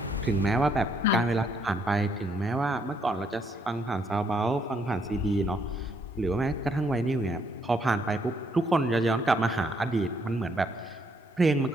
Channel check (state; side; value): normal; both; correlation 0.71